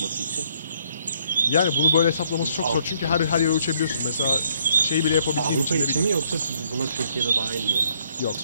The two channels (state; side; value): inverted; both; correlation -0.67